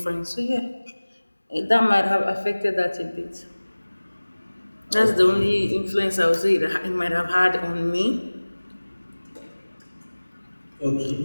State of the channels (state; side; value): inverted; both; correlation -1.00